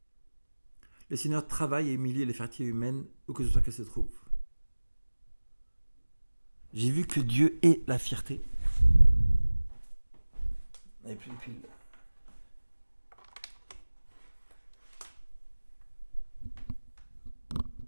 Le Seigneur travaille à humilier la fierté humaine où que ce soit qu'elle se trouve. J'ai vu que Dieu est la fierté. Et puis,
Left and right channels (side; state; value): both; inverted; correlation -1.00